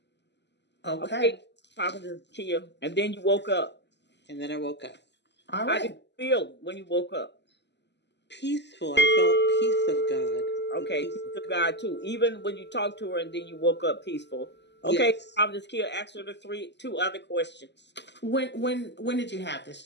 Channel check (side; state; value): right; late; 0.50 ms